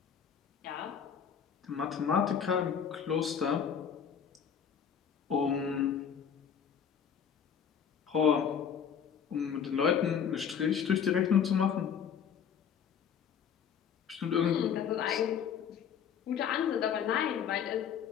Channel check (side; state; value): right; quieter; 7.7 dB